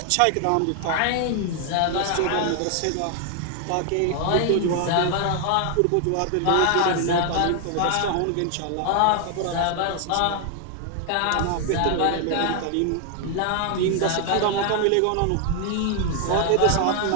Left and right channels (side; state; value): both; different; correlation 0.00